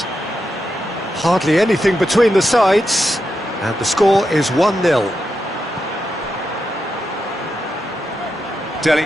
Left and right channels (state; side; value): normal; both; correlation 0.86